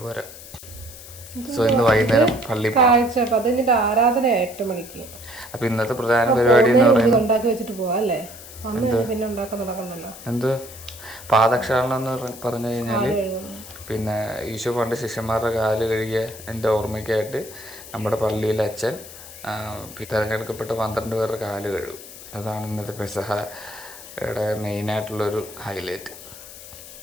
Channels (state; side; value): noise; left; hiss, 15 dB below the sound